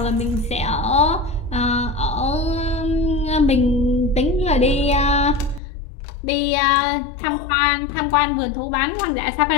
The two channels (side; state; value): right; drops out; at 5.6 s